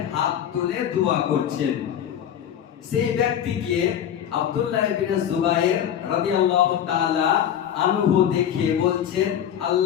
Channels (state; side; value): quieter; right; 9.7 dB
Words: হাত তুলে দোয়া করছেন। সেই ব্যক্তিকে আব্দুল্লাহ ইবনে জুবাইর রাদিয়াল্লাহু তাআলা আনহু দেখে বলছেন,